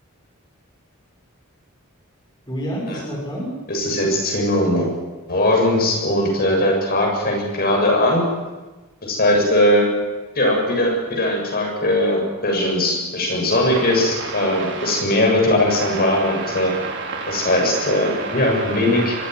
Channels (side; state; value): both; normal; correlation -0.05